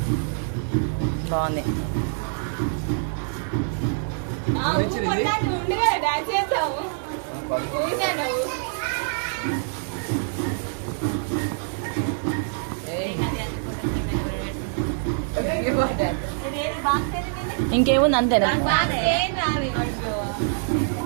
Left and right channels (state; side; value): silent; left; digital silence